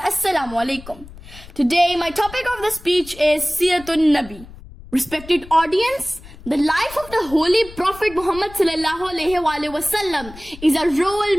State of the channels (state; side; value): noise; left; rumble, 18 dB below the sound